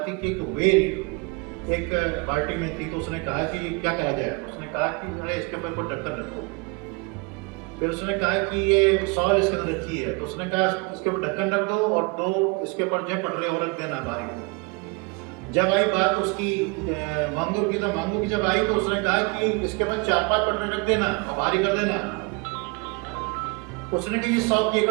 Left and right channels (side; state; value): left; quieter; 29.7 dB